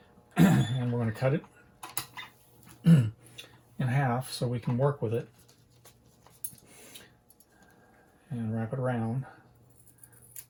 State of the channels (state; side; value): identical; both; correlation 1.00